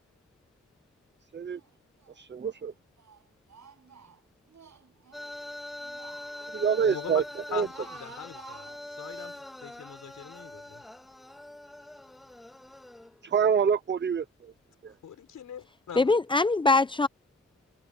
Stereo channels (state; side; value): normal; both; correlation 0.34